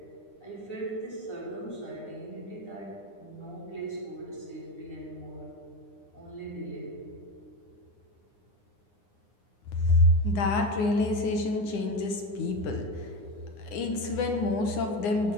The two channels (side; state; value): right; late; 9.8 ms